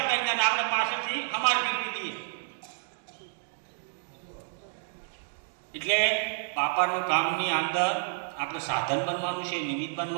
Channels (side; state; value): left; silent; digital silence